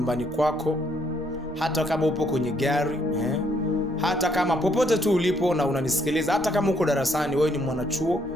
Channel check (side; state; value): both; normal; correlation 0.70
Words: kwako, hata kama upo kwenye gari, hata kama popote tu ulipo na unanisikiliza, hata kama uko darasani, wewe ni mwanachuo,